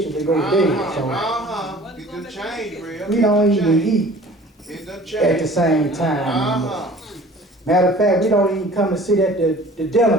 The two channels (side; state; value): both; normal; correlation 0.47